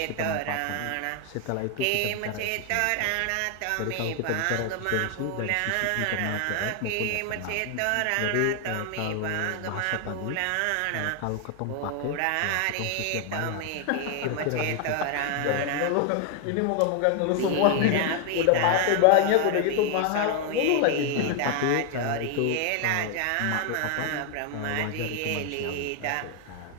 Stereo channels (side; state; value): both; different; correlation 0.00